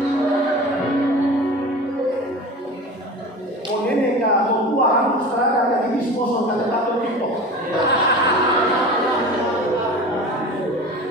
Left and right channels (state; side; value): normal; both; correlation 0.35